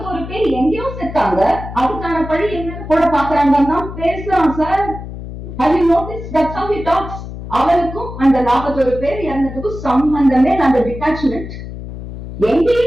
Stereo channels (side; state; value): left; noise; hum, 10 dB below the sound